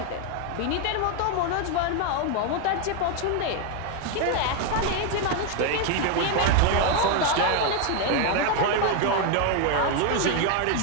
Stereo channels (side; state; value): both; different; correlation 0.01